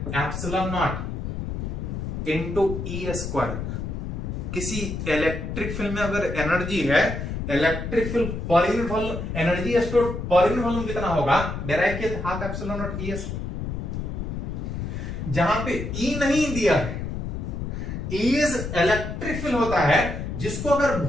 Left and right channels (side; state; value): left; noise; rumble, 5 dB below the sound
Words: epsilon not into E²। किसी इलेक्ट्रिक फील्ड में अगर एनर्जी है, इलेक्ट्रिक फील्ड पर unit volume, energy stored per unit volume कितना होगा, डेराइव किया था हाफ एप्सिलॉन नॉट E²। जहां पे E नहीं दिया है, इज इलेक्ट्रिक फील्ड होता है, जिसको अगर